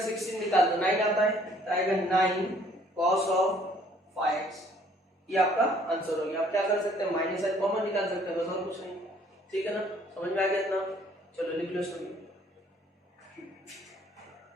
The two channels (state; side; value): normal; both; correlation 0.60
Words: 16 निकाल दो, 9 आता है, तो आएगा 9 cos ऑफ 5x। ये आपका आंसर हो गया। आप क्या कर सकते हैं, माइनस साइन कॉमन निकाल सकते हैं, बस और कुछ नहीं। ठीक है ना, समझ में आ गया इतना। चलो लिख लो सभी।